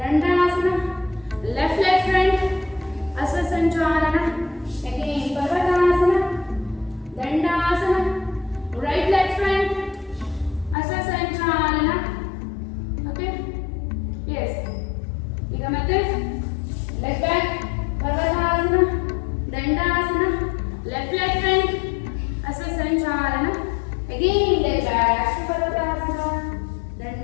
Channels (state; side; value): drops out; right; at 10.8 s